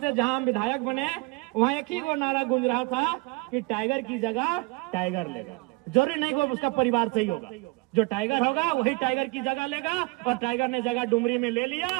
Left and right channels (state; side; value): quieter; left; 26.2 dB